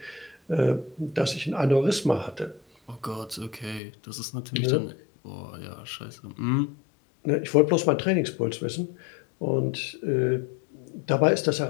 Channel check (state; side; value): drops out; right; at 3.8 s